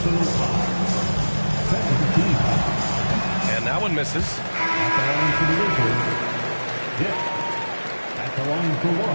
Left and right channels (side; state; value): both; inverted; correlation -1.00